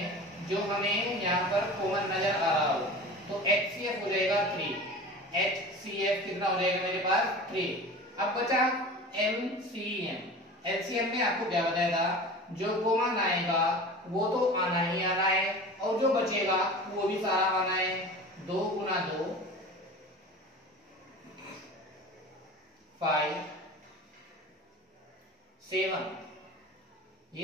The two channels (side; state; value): both; normal; correlation 0.36